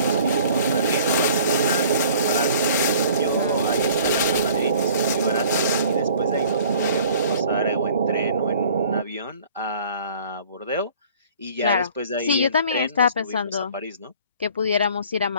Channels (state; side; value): inverted; both; correlation -0.51